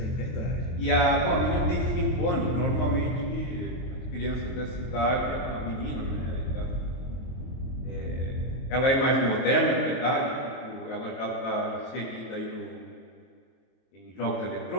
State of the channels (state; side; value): late; right; 23 ms